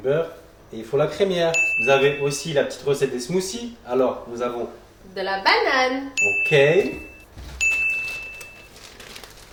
et il faut la crémière. Vous avez aussi la petite recette des smoothies. Alors nous avons de la banane, ok,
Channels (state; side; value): identical; both; correlation 1.00